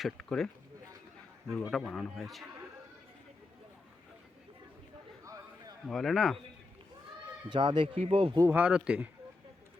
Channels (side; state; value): right; quieter; 3.3 dB